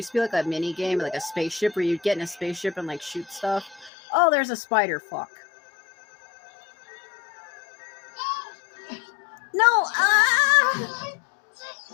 to be like a mini game, like a spaceship, where you'd get in a spaceship and like shoot stuff. Oh, there's a spider. Fuck. No! Ah!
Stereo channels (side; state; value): right; drops out; at 3.9 s